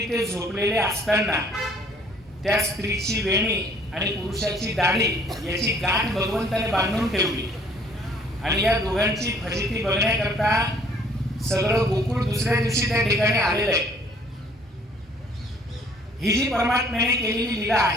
ते झोपलेले असताना त्या स्त्रीची वेणी आणि पुरुषाची दाढी याची गाठ भगवंताने बांधून ठेवली आणि या दोघांची फजिती बघण्याकरता सगळं गोकुळ दुसऱ्या दिवशी त्या ठिकाणी आलेलं आहे. ही जी परमात्म्याने केलेली लीला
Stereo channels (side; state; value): both; normal; correlation 0.59